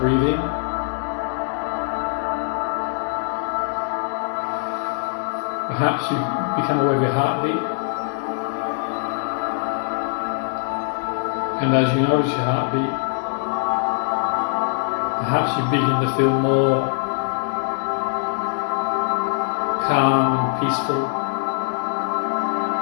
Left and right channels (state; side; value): silent; right; digital silence